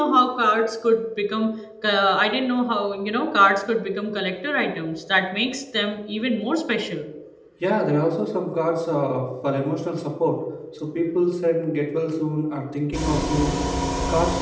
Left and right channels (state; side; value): identical; both; correlation 1.00